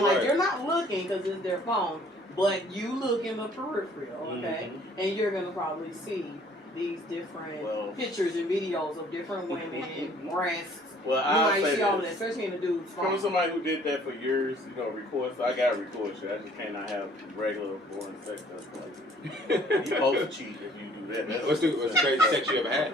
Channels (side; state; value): both; normal; correlation 0.57